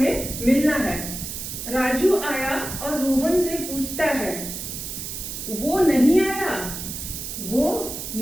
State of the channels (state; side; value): noise; right; hiss, 7 dB below the sound